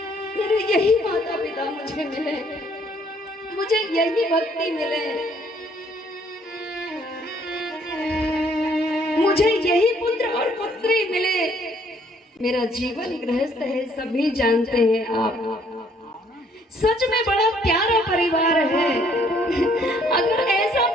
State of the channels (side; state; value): both; normal; correlation 0.64